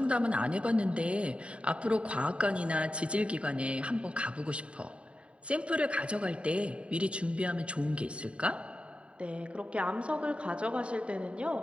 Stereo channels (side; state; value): left; late; 0.060 ms